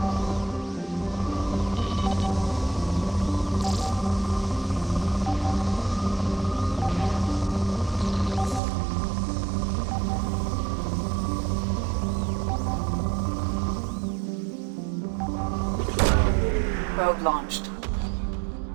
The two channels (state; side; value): drops out; left; at 8.6 s